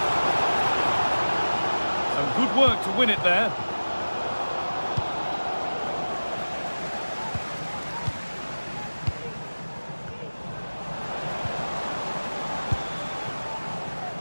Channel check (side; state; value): both; inverted; correlation -1.00